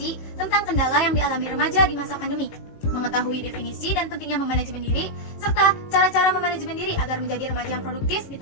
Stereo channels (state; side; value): late; right; 19 ms